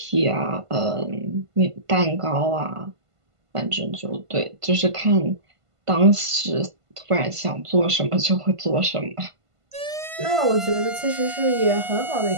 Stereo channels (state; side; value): late; left; 1.5 ms